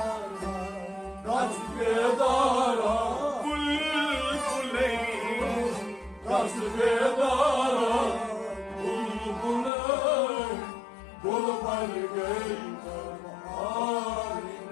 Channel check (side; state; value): right; drops out; at 9.7 s